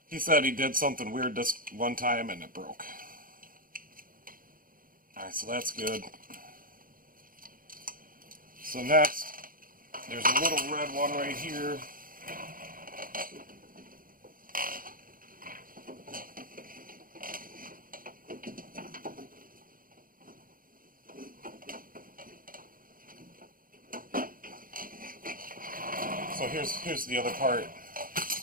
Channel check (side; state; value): left; late; 0.41 ms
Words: he said he did something weird this one time and it broke. Alright, so that's good. So next, there's a little red one right here. So here's the other part.